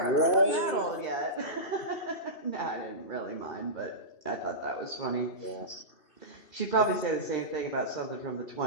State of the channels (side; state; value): right; late; 2.6 ms